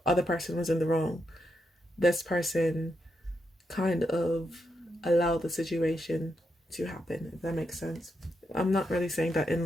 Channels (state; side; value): normal; both; correlation 0.83